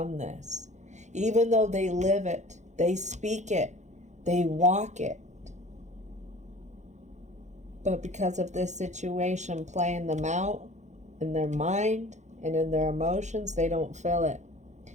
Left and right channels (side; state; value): left; late; 0.34 ms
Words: this. Even though they live it, they speak it, they walk it. But because of this situation playing them out in their mind and in their emotions, they don't feel it